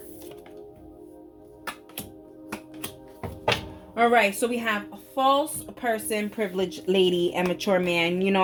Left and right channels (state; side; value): identical; both; correlation 1.00